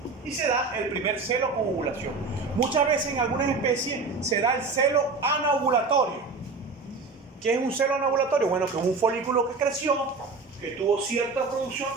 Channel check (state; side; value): quieter; left; 4.1 dB